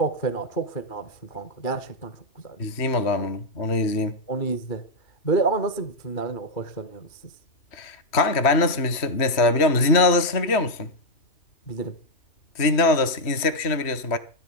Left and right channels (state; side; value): late; right; 3.1 ms